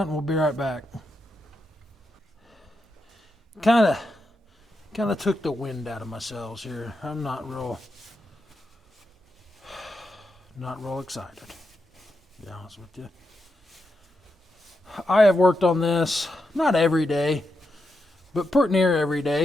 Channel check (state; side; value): normal; both; correlation 0.85